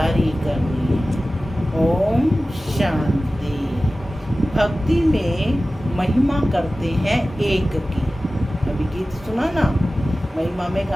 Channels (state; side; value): normal; both; correlation 0.96